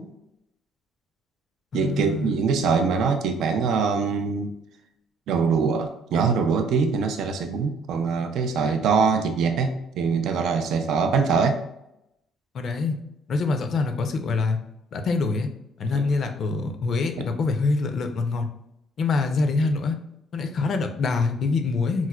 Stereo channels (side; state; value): both; normal; correlation 0.62